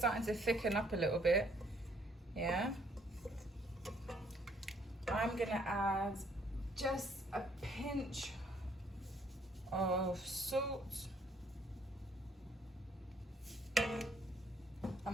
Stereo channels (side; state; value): both; normal; correlation 0.65